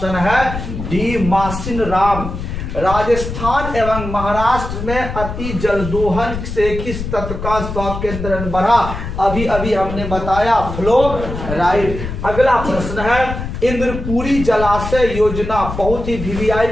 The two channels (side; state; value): left; noise; rumble, 6 dB below the sound